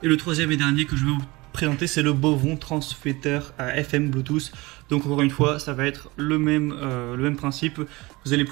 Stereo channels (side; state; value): left; quieter; 22.5 dB